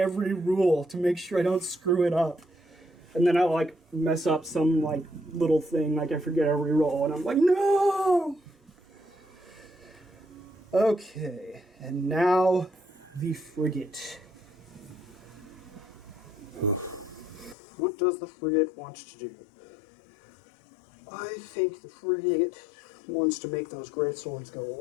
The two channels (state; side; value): drops out; right; at 17.6 s